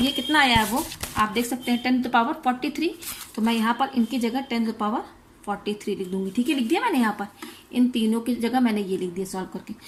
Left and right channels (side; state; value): both; identical; correlation 1.00